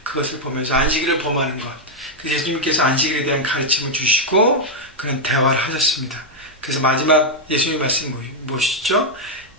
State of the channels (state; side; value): normal; both; correlation -0.01